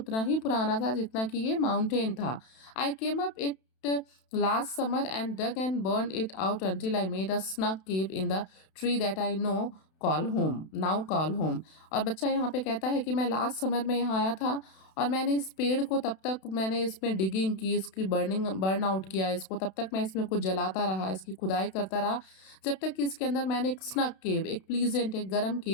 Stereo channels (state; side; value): late; right; 32 ms